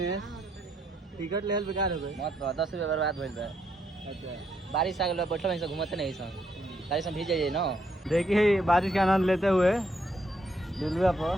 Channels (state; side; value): normal; both; correlation 0.75